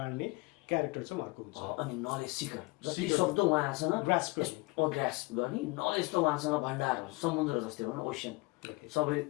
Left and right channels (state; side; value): quieter; right; 25.1 dB